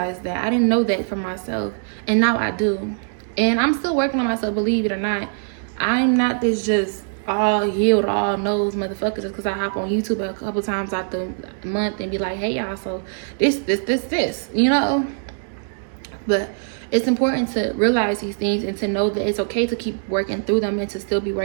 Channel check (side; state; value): left; silent; digital silence